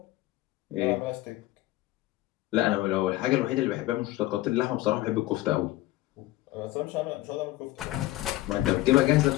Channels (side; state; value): right; quieter; 17.1 dB